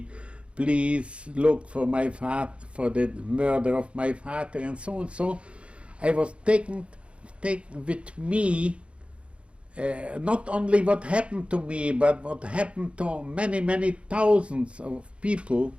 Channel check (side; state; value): left; late; 0.059 ms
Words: please look for my father, for the murder of my father, and so on. So I was taken with me not only what happened to me, but what happened to many, many thousands of people.